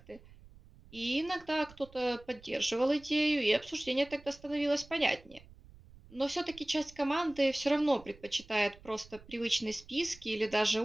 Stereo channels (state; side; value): noise; right; rumble, 22 dB below the sound